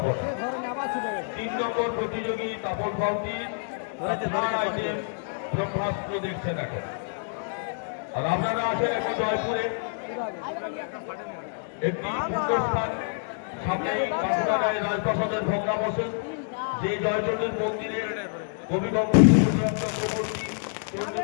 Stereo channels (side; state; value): right; silent; digital silence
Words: 3 নম্বর প্রতিযোগী তাপস বাউটির আইটেম ব্রহ্মাস্ত্র দেখছেন এখন। আর আপনারা আছেন এখন জয়পুরে একটি পুণ্যস্থান সামনেই কাকুরাগাঁয়ের রাজপ্রাসাদের ভগ্নাবশেষ, যে জয়চন্ডীর মন্দিরে কবিগঙ্গ চক্রবর্তী